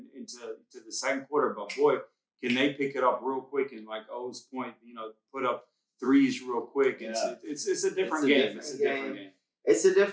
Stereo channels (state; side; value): identical; both; correlation 1.00